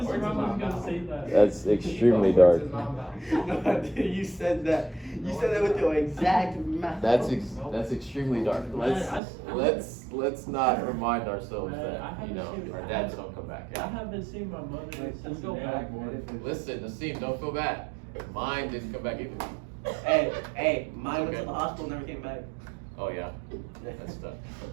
Ramos was gonna say that. That's extremely dark. No, dude, you said that. You said that with your exact mouth. That's extremely dark. Let's not remind ourselves that, you know, our dads don't come back. I haven't seen my mother since the day I was born. Listen, Nassim, don't feel bad. Mine didn't come back either. Hey, mine went Okay. to the hospital, never came back. Oh yeah, that's tough.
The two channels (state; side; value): drops out; left; at 9.2 s